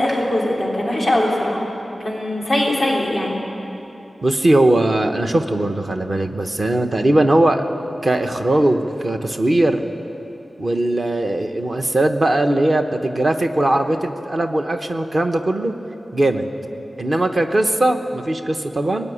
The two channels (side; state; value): both; normal; correlation 0.95